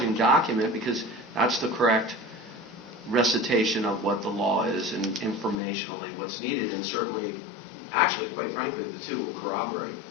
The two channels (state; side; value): drops out; right; at 5.6 s